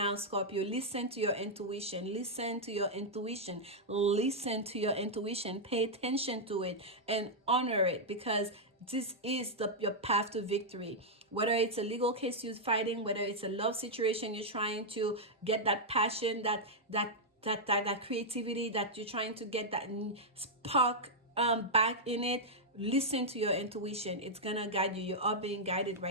Scorpio. Listen to your intuition. Listen to your intuition. Listen to your intuition. Pay attention to it and honor it, because this is your path to victory. Whether it's a legal case you're fighting, whether it's a love situation you're trying to get that passion, that creativity, that you're trying to get that spark back in it. Listen to your intuition. It's gonna guide you. You are being guided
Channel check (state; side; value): normal; both; correlation -0.05